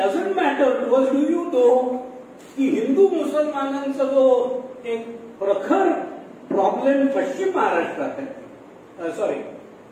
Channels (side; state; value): both; identical; correlation 1.00